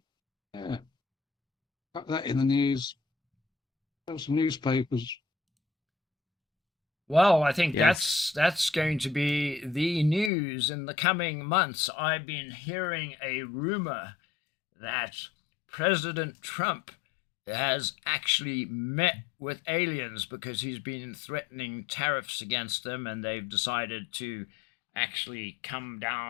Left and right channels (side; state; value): right; drops out; at 10.3 s